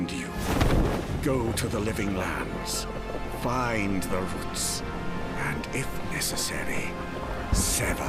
you, go to the living lands, find the roots, and if necessary,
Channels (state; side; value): identical; both; correlation 1.00